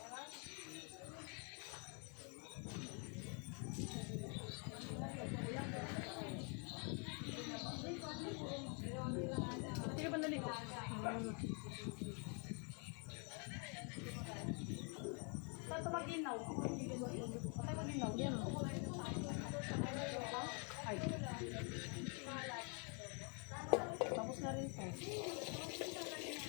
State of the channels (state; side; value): quieter; right; 38.0 dB